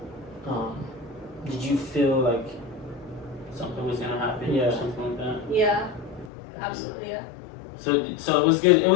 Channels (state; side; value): drops out; right; at 6.3 s